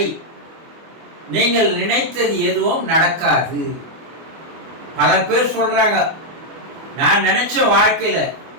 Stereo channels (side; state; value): left; late; 24 ms